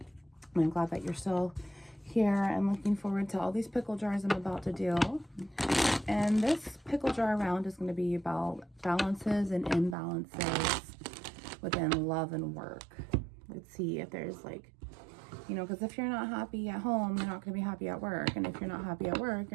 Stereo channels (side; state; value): left; drops out; at 10.0 s